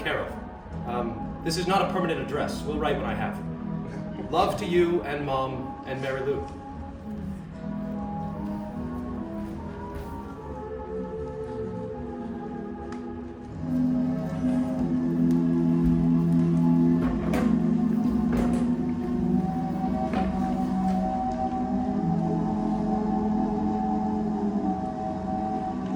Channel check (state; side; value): identical; both; correlation 1.00